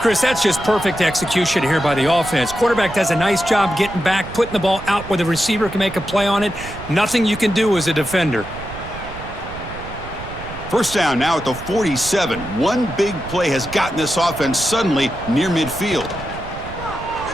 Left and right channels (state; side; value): noise; right; rumble, 13 dB below the sound